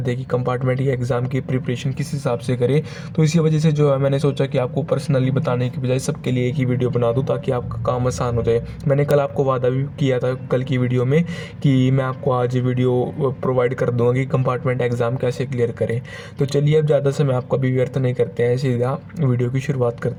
थे कि कंपार्टमेंट के एग्ज़ाम की प्रिपरेशन किस हिसाब से करें, तो इसी वजह से जो है मैंने सोचा कि आपको पर्सनली बताने की बजाय सबके लिए एक ही वीडियो बना दूँ ताकि आपका काम आसान हो जाए। मैंने कल आपको वादा भी किया था कल की वीडियो में कि मैं आपको आज वीडियो प्रोवाइड कर दूँगा कि कंपार्टमेंट एग्ज़ाम कैसे क्लियर करें। तो चलिए अब ज़्यादा समय आपका भी व्यर्थ नहीं करते हैं, सीधा वीडियो की शुरुआत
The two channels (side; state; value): both; identical; correlation 1.00